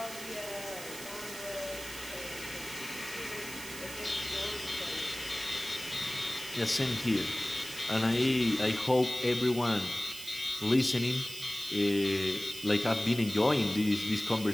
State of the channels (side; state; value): right; noise; hiss, 12 dB below the sound